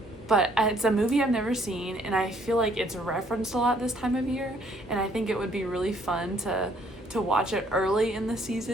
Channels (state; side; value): normal; both; correlation 0.64